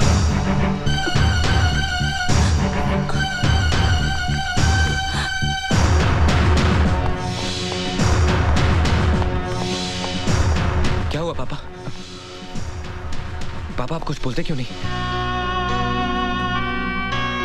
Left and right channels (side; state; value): both; identical; correlation 1.00